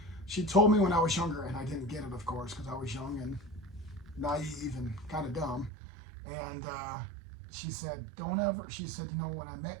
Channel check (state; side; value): drops out; left; at 5.7 s